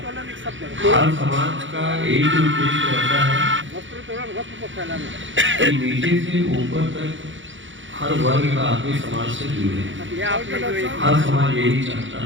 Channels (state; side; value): late; left; 0.56 ms